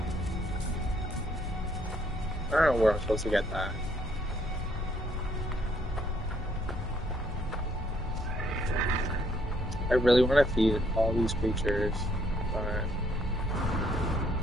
I don't know where I'm supposed to get that. I really want to feed all these creatures, but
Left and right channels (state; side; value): normal; both; correlation 0.68